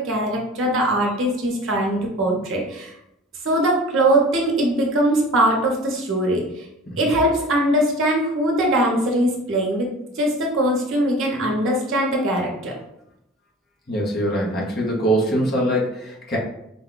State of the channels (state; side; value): normal; both; correlation 0.40